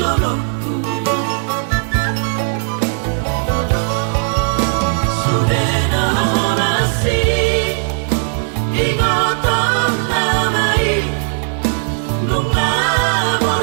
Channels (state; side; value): silent; left; 60 dB below the other